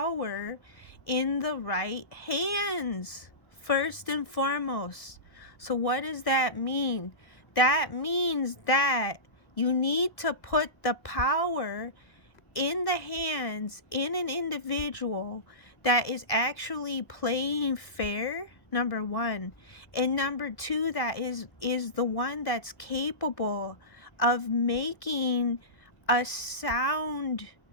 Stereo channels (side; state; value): right; late; 1.6 ms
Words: in the right hands first and foremost. So what does that mean? That means that you need to put the power in the hands in an individual that is actually playing fair, number one, and number two, that is the one that's capable of making a sound